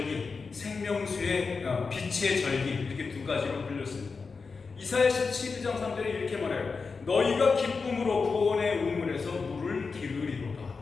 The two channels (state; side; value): quieter; right; 4.7 dB